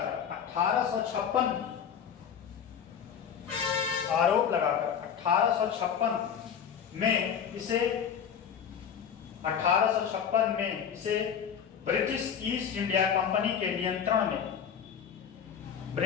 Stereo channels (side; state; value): right; quieter; 7.9 dB